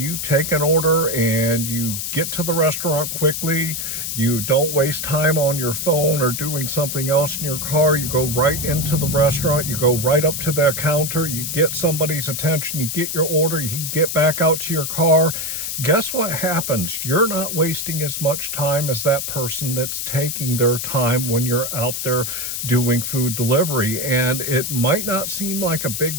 take an order and you get to the restaurant quickly, you don't waste time on your phone or doing something else in your car, you go right into the restaurant, you go right up to the counter, you get somebody's attention, you get your order, you get back out to your car, guess what happens? You're not wasting as much time as that person that's taking their time when you're out there doing food delivery. And it might not seem like a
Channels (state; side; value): noise; left; hiss, 3 dB below the sound